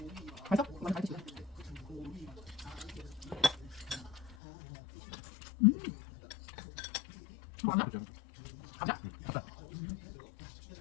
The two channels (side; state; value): right; drops out; at 4.4 s